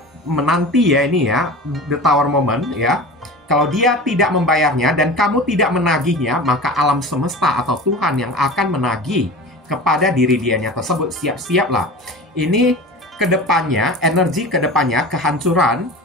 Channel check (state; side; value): normal; both; correlation 0.34